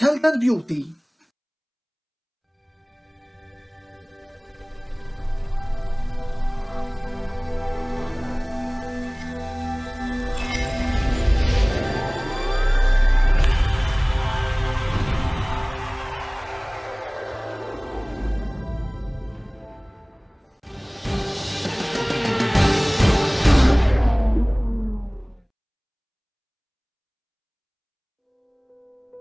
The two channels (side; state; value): both; identical; correlation 1.00